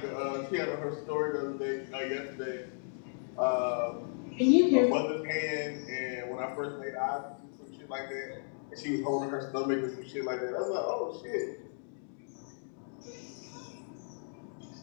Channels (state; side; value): silent; right; digital silence